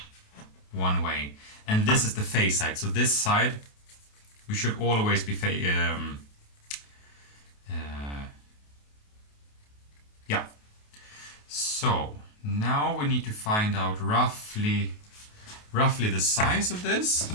one way. And this is the face side, so this side we should always be yeah. So now we need to find out roughly the size of this.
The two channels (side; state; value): right; late; 28 ms